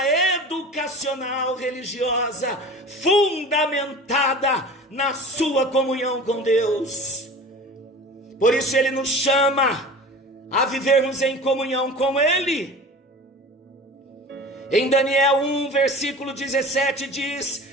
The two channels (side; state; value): both; normal; correlation 0.38